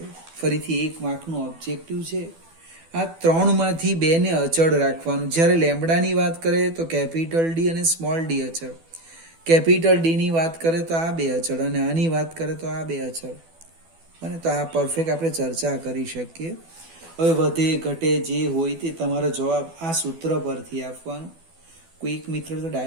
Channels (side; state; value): left; late; 12 ms